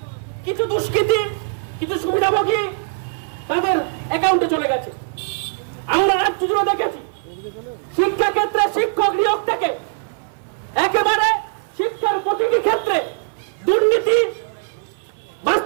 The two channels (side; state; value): left; silent; 58 dB below the other